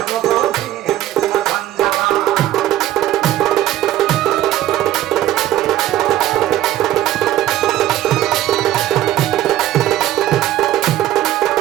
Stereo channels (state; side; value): quieter; left; 13.7 dB